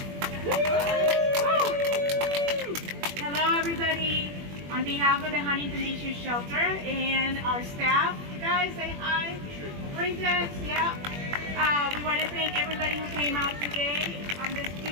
Hello, everybody. On behalf of the Huntington Beach Youth Shelter and our staff, you guys say hi. Princess, yeah. We want to thank everybody who came out today on this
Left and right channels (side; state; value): left; late; 21 ms